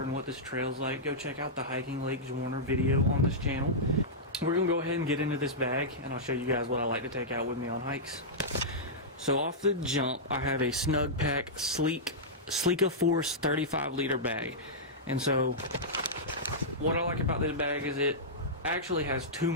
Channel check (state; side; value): normal; both; correlation -0.12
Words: and what this trail's like, go check out the Hiking Lake Zwarner video on this channel. We're going to go ahead and get into this bag, and I'll show you guys what I like to take out with me on hikes. So off the jump, I have a Snugpak Sleeka Force 35-liter bag. And so what I like about this bag is it actually has too